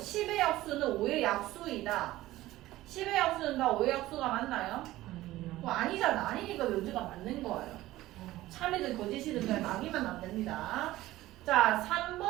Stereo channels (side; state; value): left; quieter; 16.4 dB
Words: 약수는 5의 약수이다. 10의 약수는 다 5의 약수가 맞나요? 아니잖아. 아니니까 명제가 맞는 거예요. 참이든 거짓이든 그냥 막이면 안 됩니다. 자